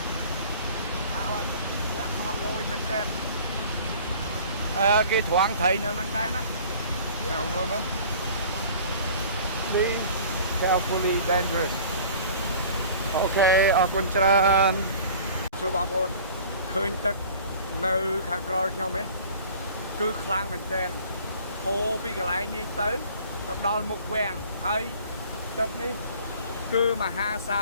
Họ lôi mình tên. Cái thoáng thấy nó năng đen á. Nào luôn đó. Be carefully dangerous. Ok, អរគុណច្រើនសួរបងប្អូនឃើញទឹកនៅខាងក្រោយខ្ញុំទេគឺខ្លាំងមែនទែនហូរពីកន្លែងនេះទៅដល់មុខវាំងហើយទឹកនេះគឺមហាសា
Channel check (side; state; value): both; inverted; correlation -0.46